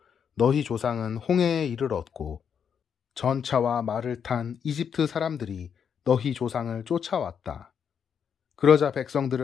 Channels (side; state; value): right; quieter; 7.4 dB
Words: 너희 조상은 홍해에 이르렀고 전차와 말을 탄 이집트 사람들이 너희 조상을 쫓아왔다. 그러자